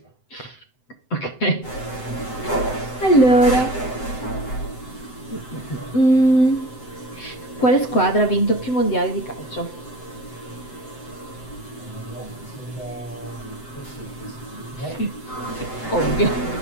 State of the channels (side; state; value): right; late; 7.8 ms